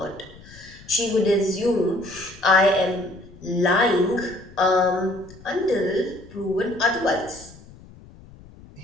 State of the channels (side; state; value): left; noise; rumble, 21 dB below the sound